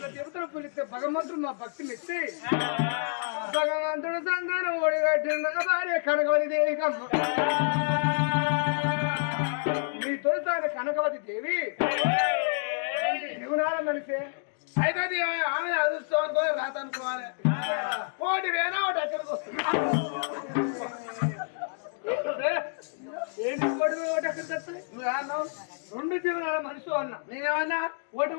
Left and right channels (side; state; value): right; silent; digital silence